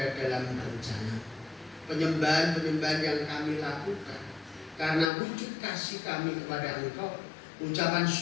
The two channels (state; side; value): drops out; right; at 5.1 s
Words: dalam rencana. Penyembahan-penyembahan yang kami lakukan karena wujud kasih kami kepada Engkau, ucapan